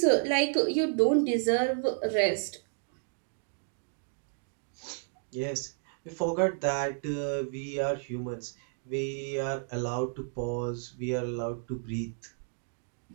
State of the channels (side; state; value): left; silent; digital silence